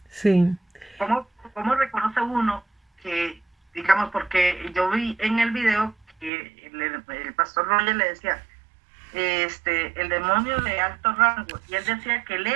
Sí. ¿Cómo reconoce uno que, digamos, porque yo vi en el video que el pastor Roger le decía, el demonio de alto rango, y él decía que él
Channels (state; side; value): drops out; left; at 6.3 s